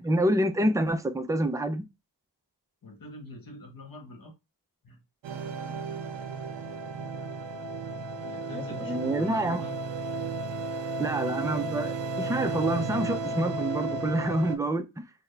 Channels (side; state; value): both; normal; correlation 0.62